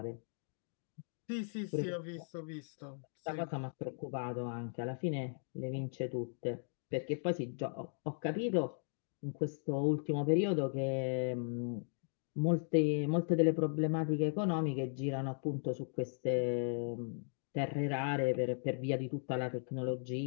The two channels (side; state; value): right; silent; digital silence